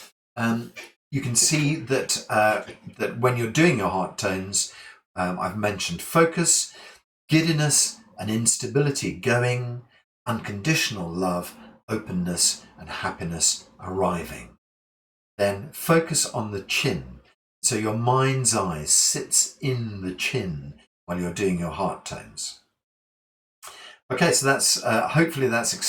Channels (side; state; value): both; identical; correlation 1.00